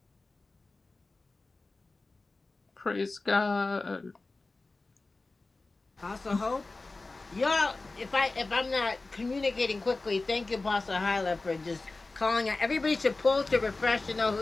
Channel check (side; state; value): right; quieter; 3.4 dB